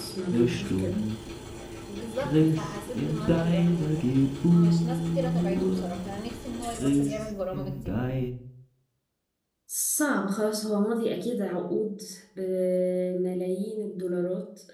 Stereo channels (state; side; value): identical; both; correlation 1.00